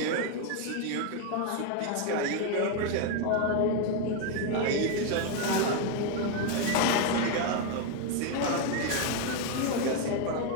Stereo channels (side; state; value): both; different; correlation 0.01